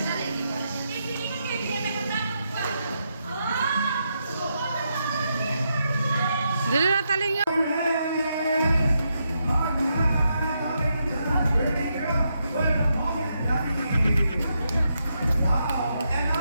Dali na taling yun.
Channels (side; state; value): both; inverted; correlation -0.82